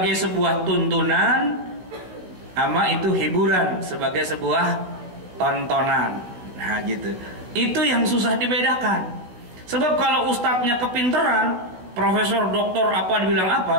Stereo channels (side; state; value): left; late; 17 ms